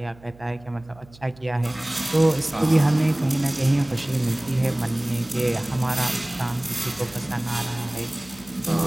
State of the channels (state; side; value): noise; right; hum, 24 dB below the sound